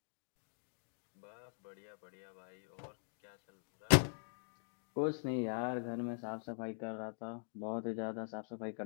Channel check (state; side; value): silent; right; digital silence